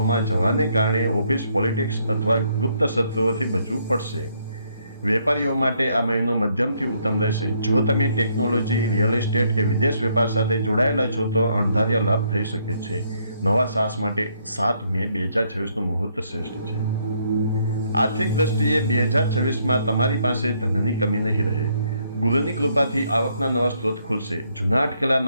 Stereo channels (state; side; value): inverted; both; correlation -0.71